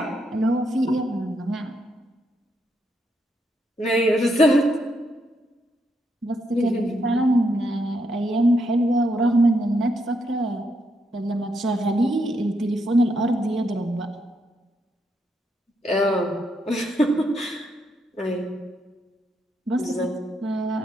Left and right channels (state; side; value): normal; both; correlation 0.78